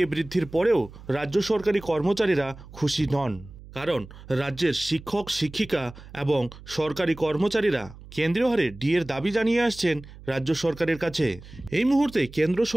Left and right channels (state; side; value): noise; right; hum, 18 dB below the sound